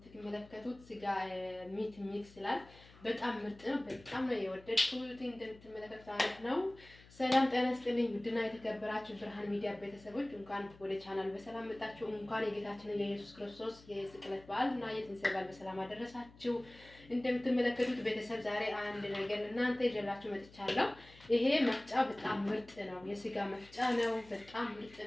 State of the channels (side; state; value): left; noise; hum, 23 dB below the sound